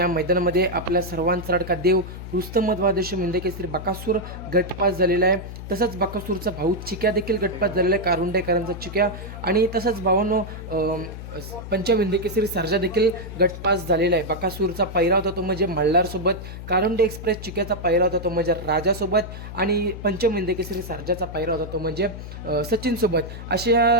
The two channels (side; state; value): left; noise; hum, 10 dB below the sound